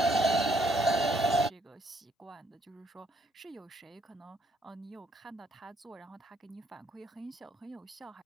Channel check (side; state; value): both; normal; correlation 0.69